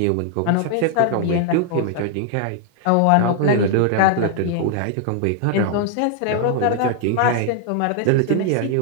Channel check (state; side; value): different; both; correlation 0.00